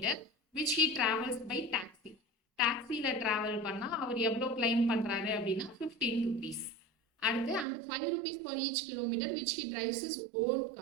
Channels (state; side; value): drops out; left; at 7.7 s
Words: which he travels by taxi. டாக்ஸியில் ட்ராவல் பண்ணால் அவர் எவ்வளோ கிளைம் பண்ணுறாரு அப்படின்னா ₹15. அடுத்து and ₹5 for each kilometre which he drives his own